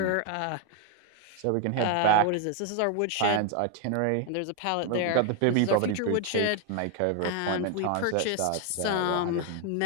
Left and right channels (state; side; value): different; both; correlation 0.00